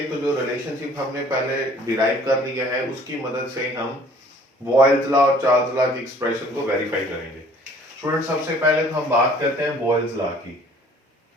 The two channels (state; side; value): normal; both; correlation 0.54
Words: तो जो relationship हमने पहले derive कर लिया है उसकी मदद से हम बॉयल्स लॉ और चार्ल्स लॉ की एक्सप्रेशन को वेरीफाई करेंगे। स्टूडेंट, सबसे पहले तो हम बात करते हैं बॉयल्स लॉ की।